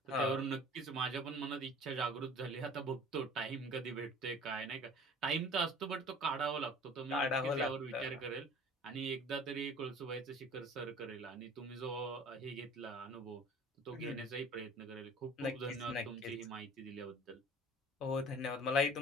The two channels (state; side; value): normal; both; correlation 0.46